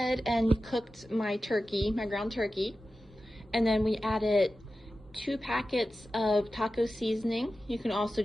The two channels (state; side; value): normal; both; correlation 0.93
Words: and cooked my turkey, my ground turkey, and then we added 2 packets of taco seasoning. You can also